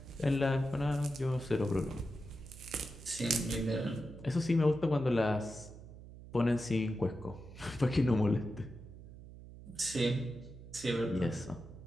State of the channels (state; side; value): noise; right; hum, 16 dB below the sound